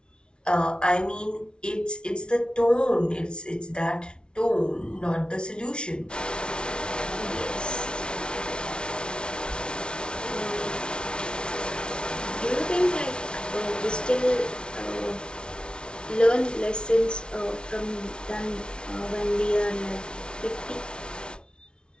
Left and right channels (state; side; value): late; right; 0.056 ms